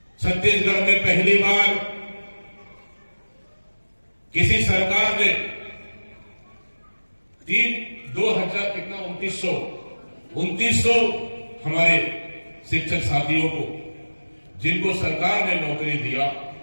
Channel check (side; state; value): both; inverted; correlation -1.00